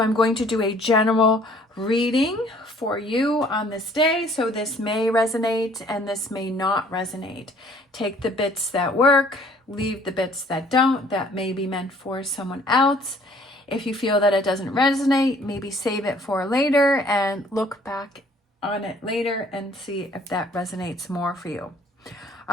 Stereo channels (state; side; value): normal; both; correlation 0.58